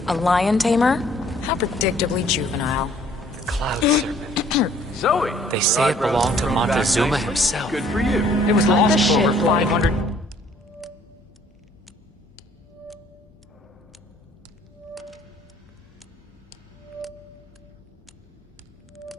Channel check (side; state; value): both; normal; correlation 0.59